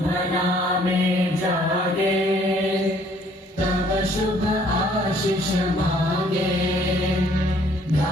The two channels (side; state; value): both; normal; correlation 0.61